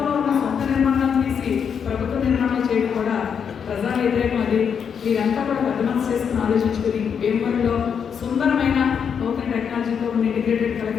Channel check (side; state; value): right; quieter; 7.2 dB